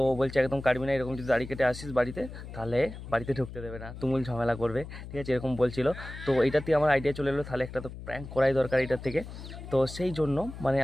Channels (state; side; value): noise; left; hum, 12 dB below the sound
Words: বলছে একদম কাটবি না, এরকম যদি দাড়ি কেটে আসিস বাড়িতে তাহলে বাড়িতে ঢুকতে দেবে না, তুমুল ঝামেলা করবে, ঠিক আছে? এরকম বলছিল। তো এইটাতে আমার আইডিয়া চলে এলো, তাহলে একটা তো প্র্যাঙ্ক করাই দরকার এটার থেকে। তো সেই জন্য মানে